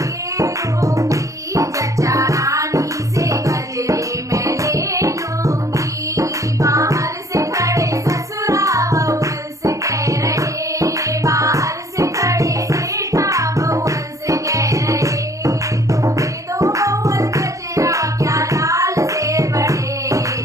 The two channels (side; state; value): left; late; 0.16 ms